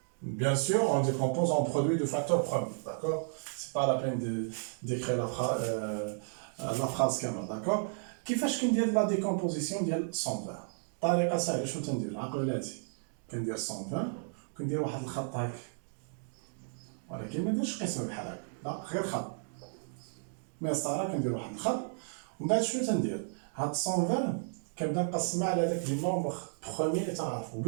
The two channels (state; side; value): silent; left; digital silence